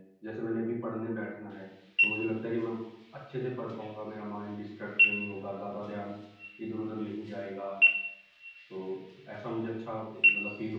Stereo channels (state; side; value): identical; both; correlation 1.00